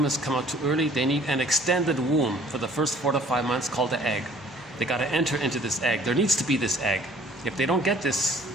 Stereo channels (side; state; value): both; normal; correlation 0.54